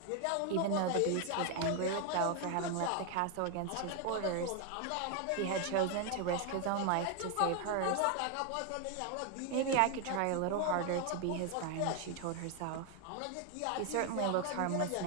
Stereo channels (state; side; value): different; both; correlation 0.01